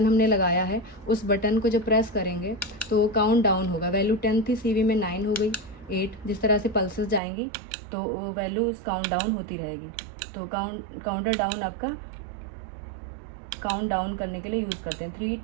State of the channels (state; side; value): drops out; left; at 7.2 s